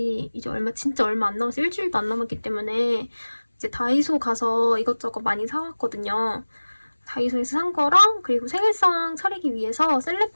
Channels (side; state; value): both; inverted; correlation -1.00